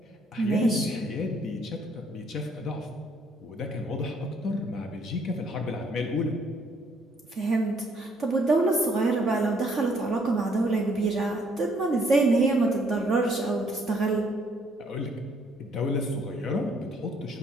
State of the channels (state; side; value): normal; both; correlation 0.66